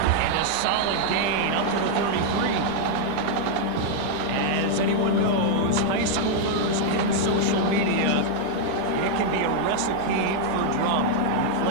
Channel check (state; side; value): different; both; correlation -0.01